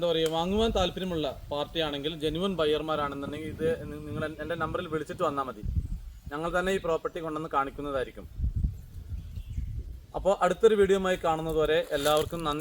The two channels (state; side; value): identical; both; correlation 1.00